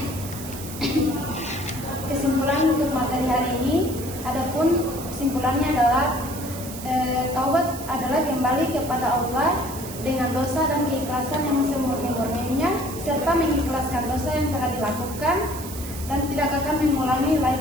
Kesimpulan untuk materi hari ini, adapun kesimpulannya adalah taubat adalah kembali kepada Allah dengan dosa dan keikhlasan yang semurni-murninya, serta mengikhlaskan dosa yang telah dilakukan dan tidak akan mengulangi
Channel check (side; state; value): right; noise; hiss, 12 dB below the sound